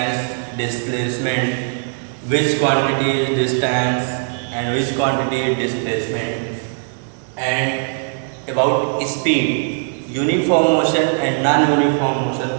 displacement, which quantity is distance and which quantity is displacement, and about speed. Uniform motion and non-uniform motion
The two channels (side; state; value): left; silent; digital silence